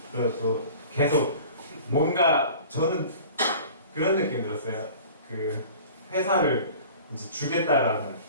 그래서 또 계속 뭔가 저는 그런 느낌이 들었어요. 그 회사를 이제 주겠다라는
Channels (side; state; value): both; inverted; correlation -0.43